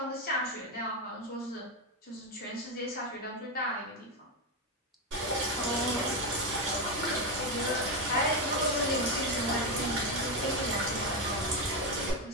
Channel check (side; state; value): both; normal; correlation 0.09